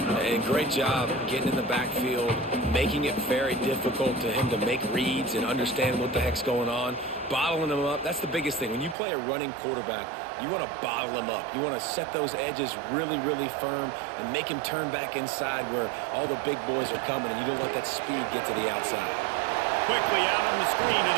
And great job getting in the backfield, making it very difficult to him to make reads and understand what the heck's going on, bottling him up. That's the biggest thing. When you play a running quarterback, you want to bottle him up. You want to set those edges really, really firm and make him turn back inside where all the big boys are coming, and you don't let that speed get to the outside. Quickly out on the screen to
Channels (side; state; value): left; drops out; at 9.0 s